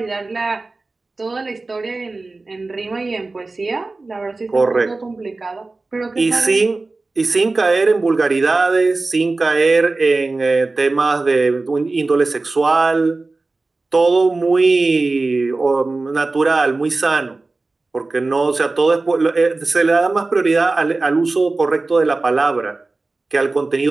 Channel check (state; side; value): quieter; left; 3.4 dB